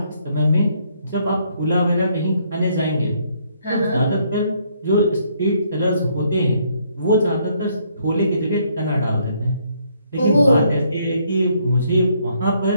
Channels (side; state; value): both; inverted; correlation -0.69